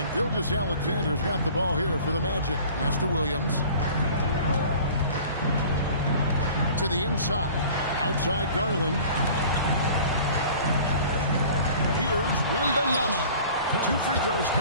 Gilgeous-Alexander's got the ball here for the Magic. Pass to Williams. To the inside. Outside Garland. Here's Wembanyama. 2 free throws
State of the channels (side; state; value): both; inverted; correlation -0.46